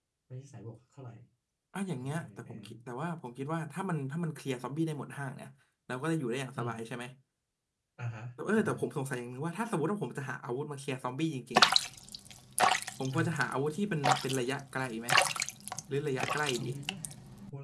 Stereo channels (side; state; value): both; identical; correlation 1.00